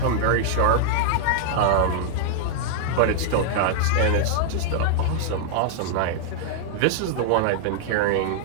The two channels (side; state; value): both; different; correlation -0.01